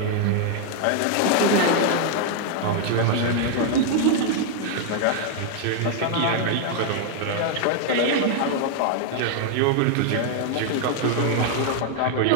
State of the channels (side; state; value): both; different; correlation 0.00